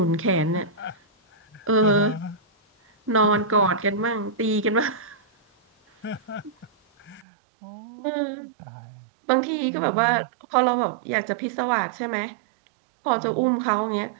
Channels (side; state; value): left; drops out; at 7.2 s